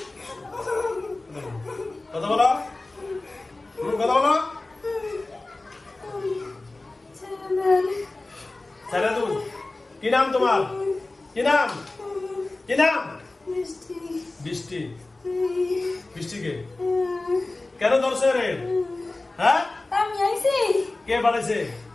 কথা বলো কথা বলো। ছেলে তুমি কি নাম তোমার? কি নাম? কি নাম? বৃষ্টি। বৃষ্টিকে কেন ধরছে রে? হ্যাঁ আমি আইছি। কে পাঠাইছে?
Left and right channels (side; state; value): right; quieter; 3.1 dB